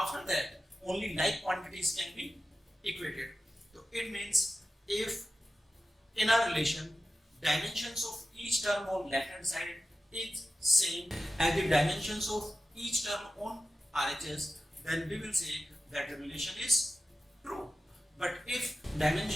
that only like quantities can be equated. So it means if in a relation dimensions of each term on left hand side is same as the dimensions of each term on RHS, then we will say that the relation is true. But if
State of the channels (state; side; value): normal; both; correlation 0.93